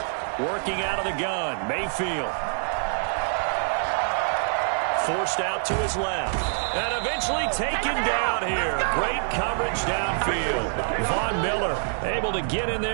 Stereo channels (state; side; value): silent; left; digital silence